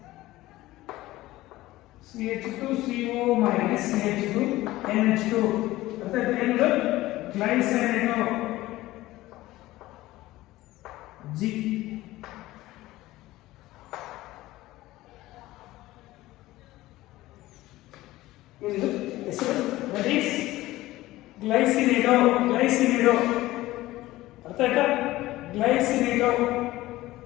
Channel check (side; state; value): right; quieter; 17.2 dB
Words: CH2CO minus CH2NH2. ಅರ್ಥ ಆಯ್ತಾ? ಏನು? ಗ್ಲೈಸಿನೇಟೋ G. ಇದು ಹೆಸರು. That is glycinato. ಅರ್ಥ ಆಯ್ತಾ? ಗ್ಲೈಸಿನೇಟೋ